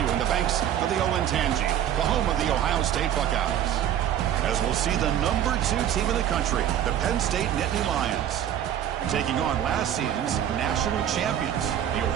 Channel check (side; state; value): left; quieter; 10.5 dB